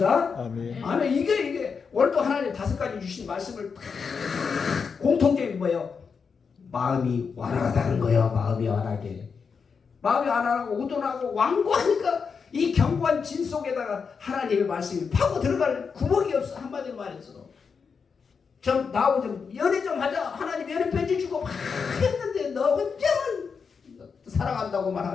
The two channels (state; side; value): quieter; right; 5.7 dB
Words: 아멘. 아멘. 이게 오늘도 하나님 5가지 주신 말씀을 공통적인 뭐예요? 마음이 완화하다는 거예요. 마음이 완하게. 마음이 완화하고 우둔하고 완고하니까 이 견고한 진 속에다가 하나님의 말씀이 파고 들어갈 구멍이 없어. 한마디로 말해서. 좀 나하고 좀 연애 좀 하자. 하나님 연애 편지 주고 막 했는데 너 혼자만 사랑한다고